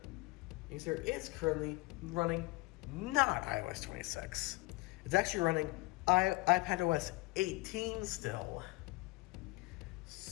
You see, it's currently running not iOS 26. It's actually running iPadOS 18 still.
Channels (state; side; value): quieter; right; 23.3 dB